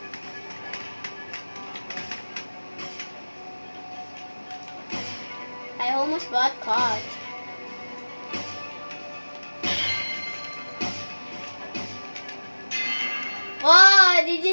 I almost got caught. Whoa, did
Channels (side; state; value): both; inverted; correlation -1.00